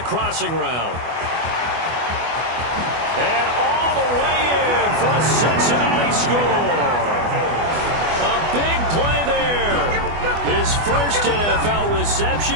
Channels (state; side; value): late; left; 24 ms